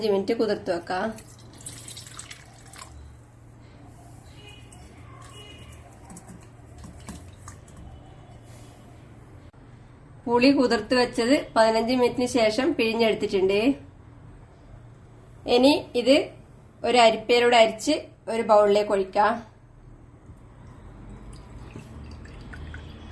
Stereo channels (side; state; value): both; identical; correlation 1.00